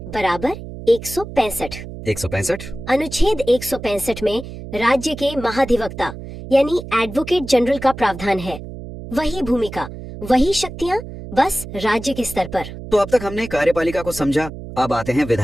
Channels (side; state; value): right; noise; hum, 11 dB below the sound